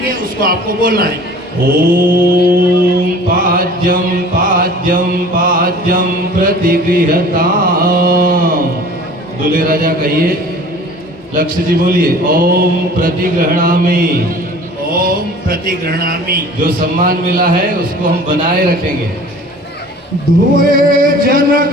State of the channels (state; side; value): normal; both; correlation 0.45